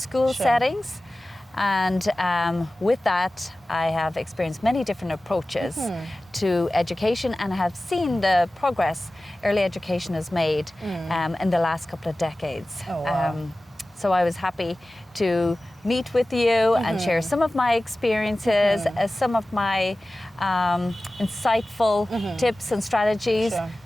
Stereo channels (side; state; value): both; normal; correlation 0.96